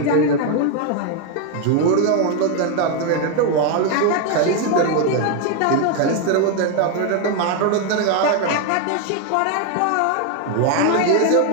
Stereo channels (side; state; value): both; different; correlation 0.01